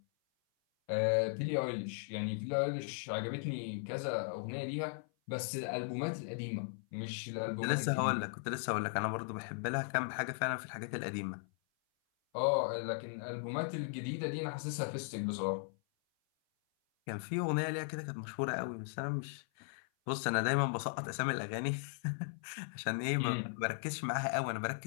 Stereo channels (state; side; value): silent; right; 53 dB below the other